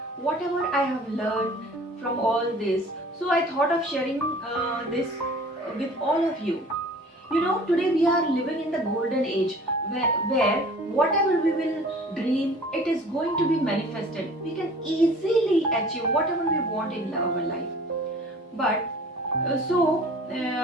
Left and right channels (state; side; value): normal; both; correlation 0.47